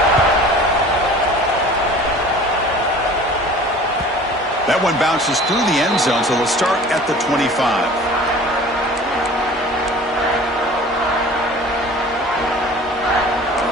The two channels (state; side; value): normal; both; correlation 0.44